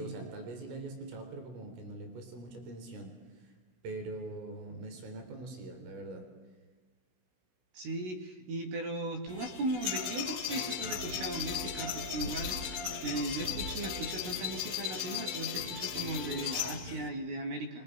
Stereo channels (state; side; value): late; left; 16 ms